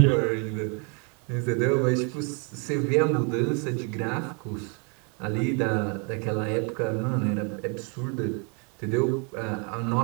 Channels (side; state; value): left; quieter; 35.7 dB